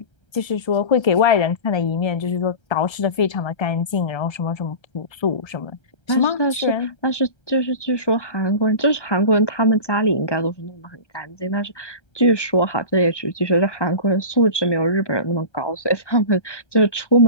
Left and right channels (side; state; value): right; late; 1.3 ms